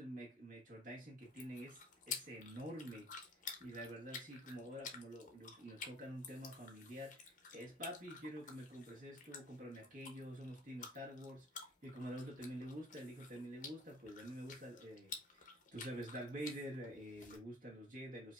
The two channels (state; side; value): normal; both; correlation 0.52